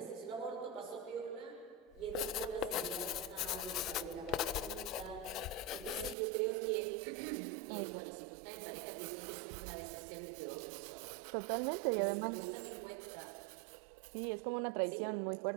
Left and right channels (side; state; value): left; drops out; at 6.2 s